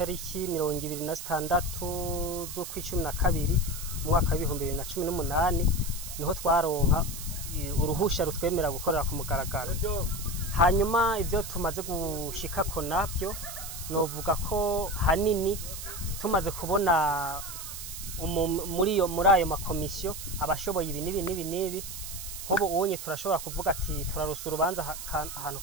26 z'ukwicumi mu mwaka wa 2018, niho twaronka uruhusha rutwemera gukorera ku mugaragaro. Hanyuma ivyo tumaze gushikako navyo novuga ko hanini tumaze kubona muri ayo makomisiyo abashoboye ibi nibi. Nkubu ubonye turashobora kuvuga ati turarusa urubanza ahantu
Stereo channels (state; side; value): noise; right; hiss, 9 dB below the sound